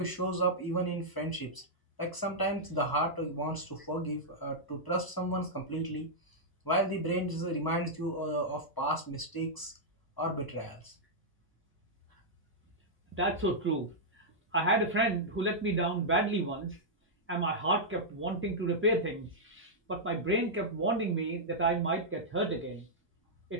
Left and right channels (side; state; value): right; late; 1.0 ms